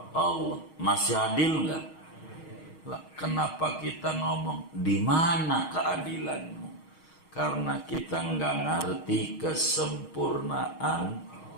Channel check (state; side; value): late; right; 6.4 ms